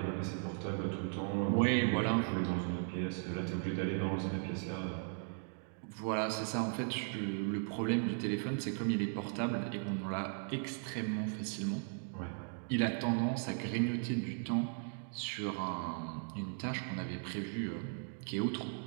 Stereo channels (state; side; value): silent; left; 53 dB below the other